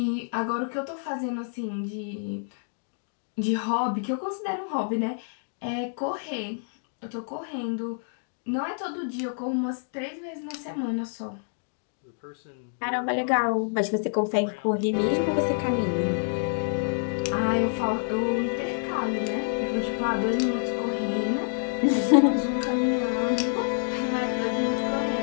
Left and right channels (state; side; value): silent; right; 60 dB below the other